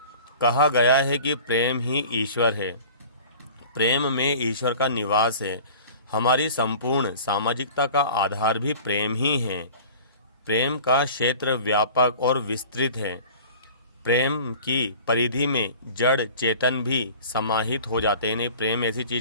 कहा गया है कि प्रेम ही ईश्वर है। प्रेम में ईश्वर का निवास है। हमारी संपूर्ण सामाजिकता का आधार भी प्रेम ही है। प्रेम का क्षेत्र व्यापक और विस्तृत है। प्रेम की परिधि में जड़ चेतन भी समाहित हो जाते हैं। प्रेम ऐसी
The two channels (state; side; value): inverted; both; correlation -0.42